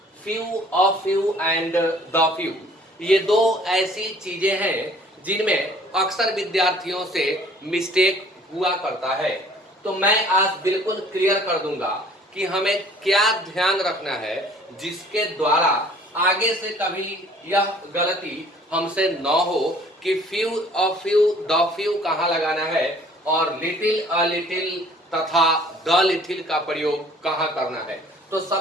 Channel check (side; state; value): both; normal; correlation 0.54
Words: few, a few and the few. ये दो ऐसी चीजें हैं जिनमें अक्सर विद्यार्थियों से मिस्टेक हुआ करता है। तो मैं आज बिल्कुल क्लियर कर दूंगा कि हमें क्या ध्यान रखना है जिसके द्वारा आगे से कभी यह गलती हमसे न हो कि few, a few, the few कहाँ लगाना है और लिटिल, अ लिटिल तथा द लिटिल का प्रयोग कहाँ करना है। तो